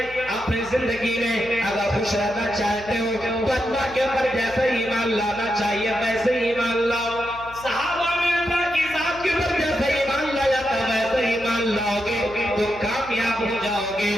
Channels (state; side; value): noise; left; hum, 19 dB below the sound